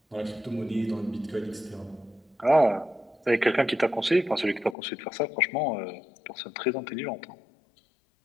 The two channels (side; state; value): right; drops out; at 4.8 s